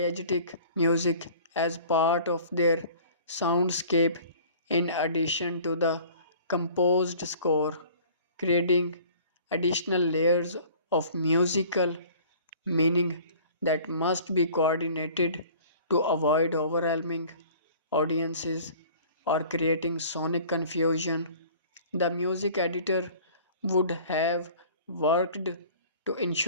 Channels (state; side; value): inverted; both; correlation -0.48